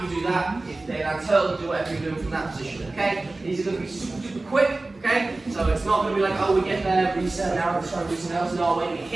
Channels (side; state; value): left; quieter; 3.1 dB